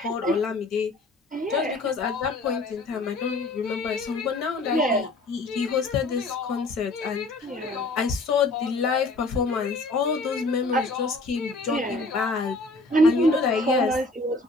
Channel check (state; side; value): quieter; right; 3.0 dB